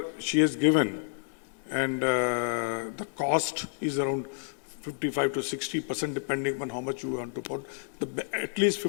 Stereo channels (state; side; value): silent; right; 58 dB below the other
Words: she has given, and the cost is around 55 to 60%, depending on how much you want to put. At least